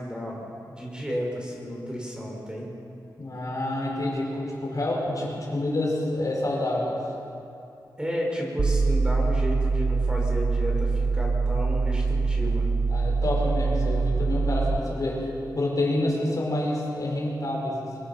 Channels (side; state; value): both; normal; correlation 0.89